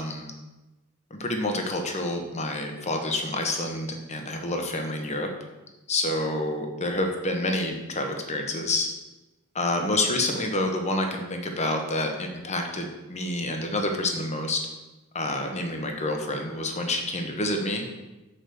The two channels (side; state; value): both; normal; correlation 0.15